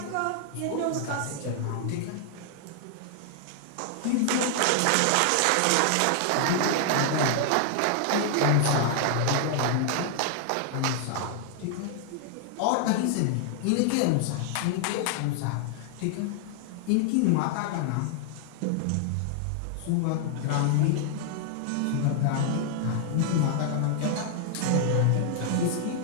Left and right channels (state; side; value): different; both; correlation 0.00